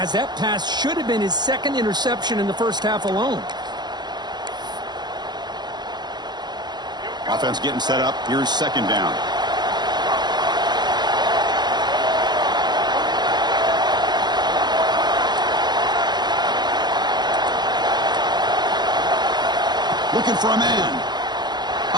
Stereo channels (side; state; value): left; late; 0.21 ms